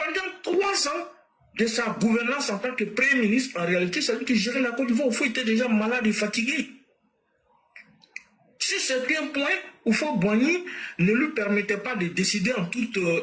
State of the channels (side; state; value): both; identical; correlation 1.00